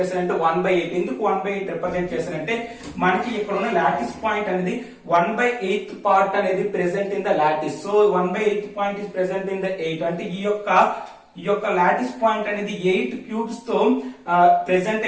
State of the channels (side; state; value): both; identical; correlation 1.00